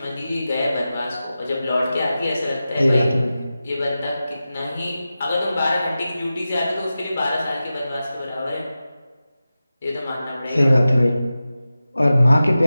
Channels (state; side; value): inverted; both; correlation -0.94